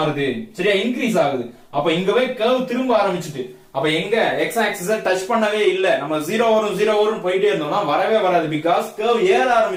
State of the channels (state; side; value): identical; both; correlation 1.00